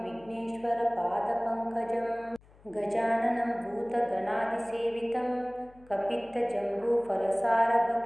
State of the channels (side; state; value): left; noise; hum, 26 dB below the sound